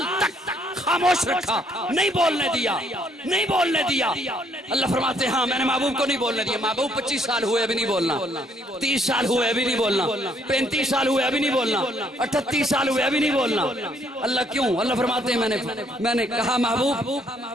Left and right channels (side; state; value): both; normal; correlation 0.67